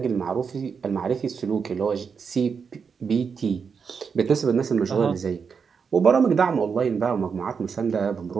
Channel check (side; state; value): left; quieter; 6.0 dB